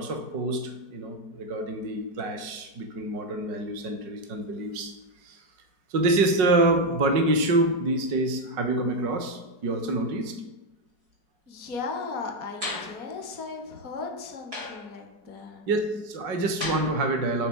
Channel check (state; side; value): late; left; 4.8 ms